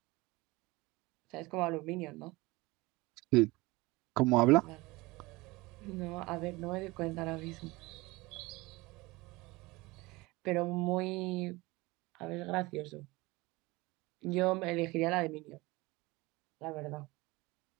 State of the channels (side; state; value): left; quieter; 22.2 dB